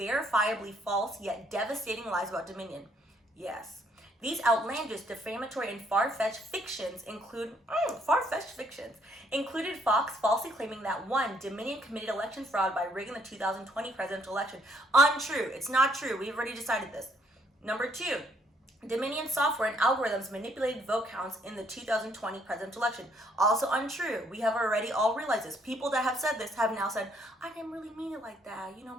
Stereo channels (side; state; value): both; normal; correlation 0.68